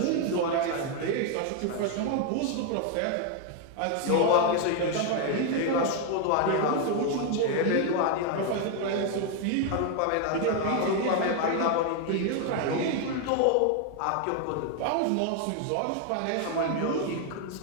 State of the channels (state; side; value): different; both; correlation 0.01